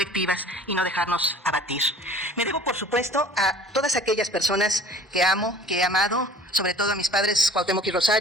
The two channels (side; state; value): both; normal; correlation 0.47